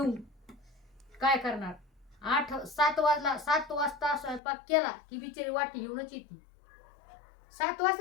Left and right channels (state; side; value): drops out; right; at 4.4 s